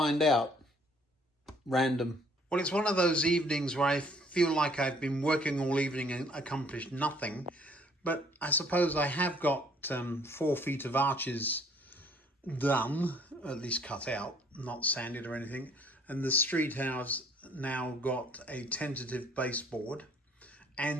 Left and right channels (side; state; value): both; normal; correlation 0.60